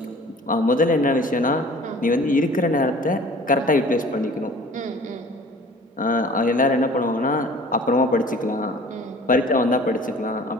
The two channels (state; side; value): normal; both; correlation 0.47